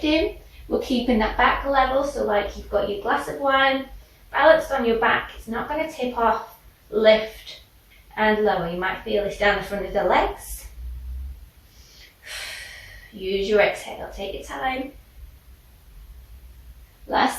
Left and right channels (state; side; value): identical; both; correlation 1.00